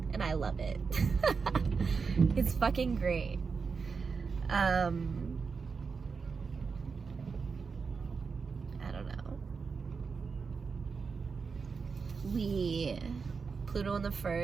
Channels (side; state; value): left; quieter; 5.2 dB